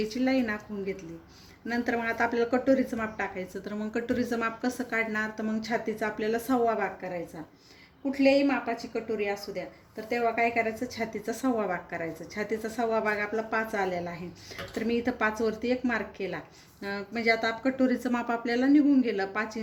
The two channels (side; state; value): both; identical; correlation 1.00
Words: याची लाईन आखून घेतली. नंतर मग आता आपल्याला कटोरीचं माप टाकायचं. तर मग कटोरीचं माप कसं काढणार, तर मग छातीचा आपल्याला 1/2 भाग करायचा. कुठल्याही मापाची कटोरी असू द्या, तर तेव्हा काय करायचं, छातीचा 1/2 भाग करायचं. छातीचा 1/2 भाग आपला 5 आलेला आहे. तर मी इथं 5 वरती 1 मार्क केला. म्हणजे आता कटोरीचं माप आपल्याला निघून गेलं. 5